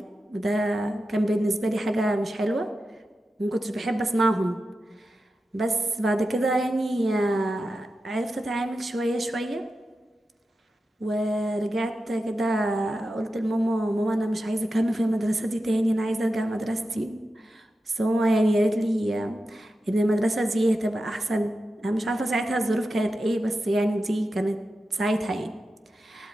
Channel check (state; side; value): normal; both; correlation 0.91